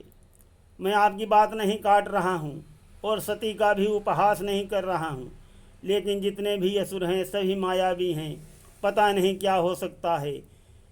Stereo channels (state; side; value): identical; both; correlation 1.00